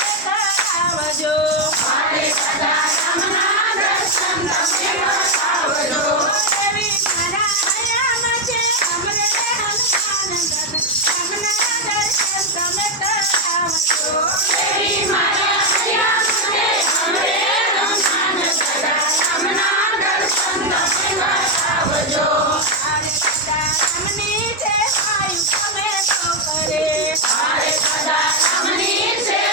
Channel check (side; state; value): both; normal; correlation 0.03